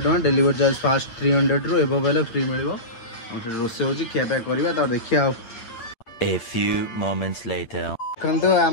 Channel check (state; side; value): late; right; 8.7 ms